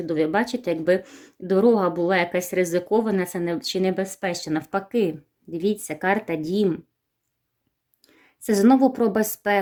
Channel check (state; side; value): identical; both; correlation 1.00